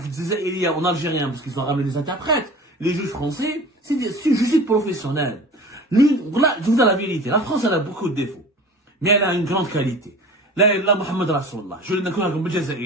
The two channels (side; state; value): both; normal; correlation 0.39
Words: il y a en algérien, parce qu'ils ont ramené des interprètes. Les juges français, c'est une justice professionnelle. Là, je vous dis la vérité, la France, elle a beaucoup de défauts. Mais elle a une grande qualité. Là, Mohamed Rasulullah, je l'ai comme